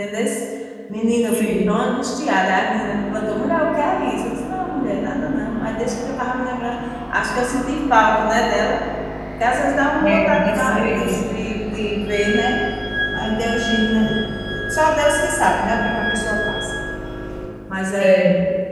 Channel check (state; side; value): identical; both; correlation 1.00